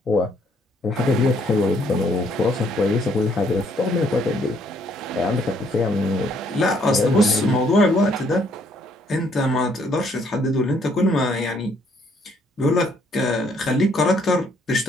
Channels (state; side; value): normal; both; correlation 0.67